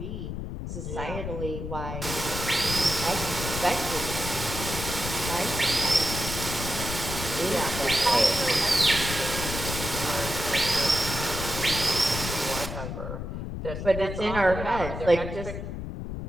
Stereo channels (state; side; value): noise; left; rumble, 6 dB below the sound